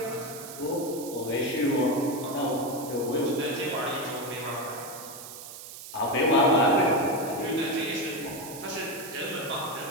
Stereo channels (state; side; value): noise; right; hiss, 13 dB below the sound